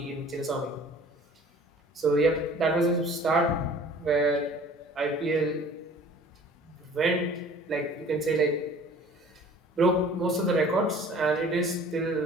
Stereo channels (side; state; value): both; normal; correlation 0.48